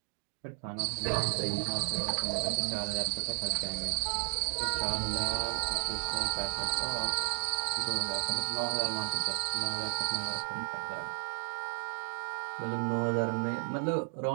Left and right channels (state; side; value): silent; left; digital silence